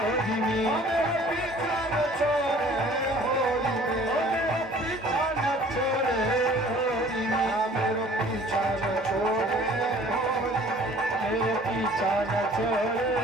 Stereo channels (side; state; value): both; normal; correlation 0.51